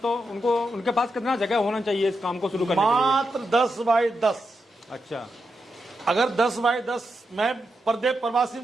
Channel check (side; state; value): both; normal; correlation 0.86